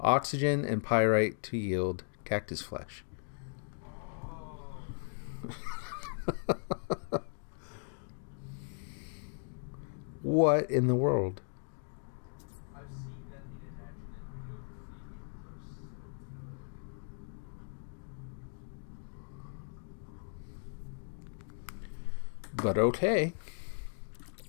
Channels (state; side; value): silent; right; digital silence